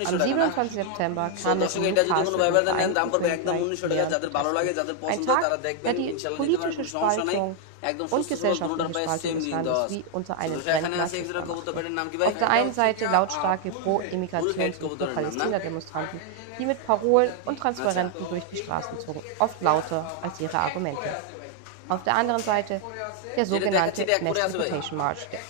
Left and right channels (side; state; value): both; different; correlation 0.00